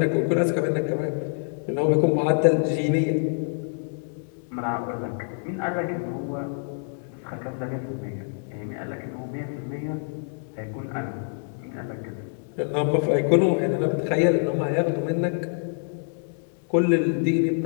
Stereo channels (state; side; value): silent; right; 61 dB below the other